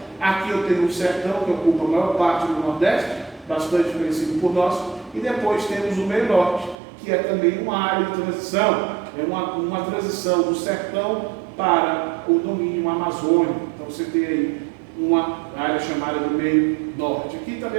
Aqui eu tenho o Sertão, que ocupa a maior parte do Nordeste, bastante conhecido por nós. E depois temos o Meio Norte, que é também uma área de transição. É uma transição do Sertão para o domínio amazônico. Então você tem aí uma área chamada do Meio Norte. Aqui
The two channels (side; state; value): left; drops out; at 6.8 s